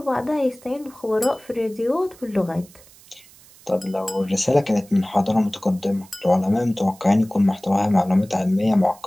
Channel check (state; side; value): noise; right; hiss, 24 dB below the sound